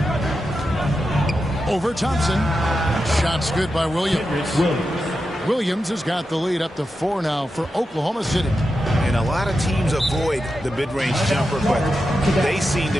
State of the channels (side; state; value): both; normal; correlation 0.89